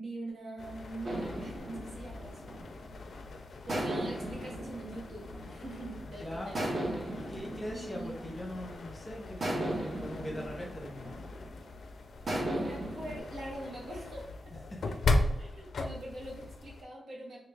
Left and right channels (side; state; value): both; normal; correlation 0.86